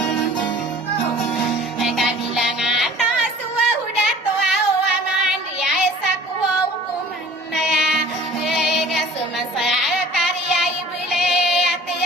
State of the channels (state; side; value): normal; both; correlation 0.46